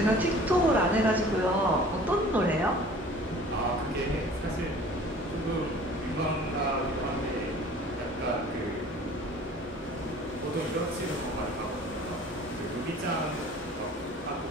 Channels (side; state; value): both; normal; correlation 0.47